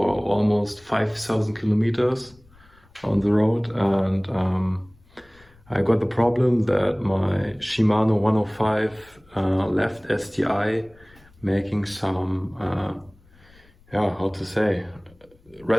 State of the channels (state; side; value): noise; left; rumble, 29 dB below the sound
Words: almost 5,000 kilometers on the road, and I got the problem that my Shimano 105 left STI making some, how to say,